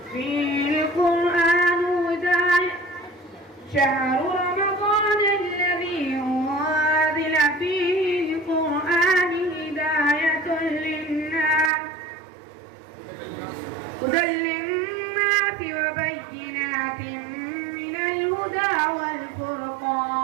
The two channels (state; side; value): drops out; left; at 11.7 s